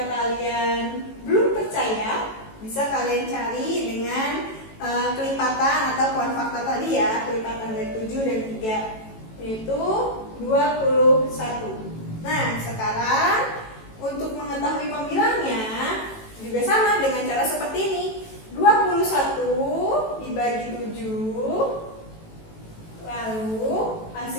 kalian belum percaya, bisa kalian cari dengan kelipatan atau kuan fakta tadi ya, kelipatan dari 7 dan 3, yaitu 21. Nah, sekarang untuk mengetahui pembilangnya juga sama dengan cara seperti ini. 21 dibagi 7, lalu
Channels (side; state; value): right; late; 18 ms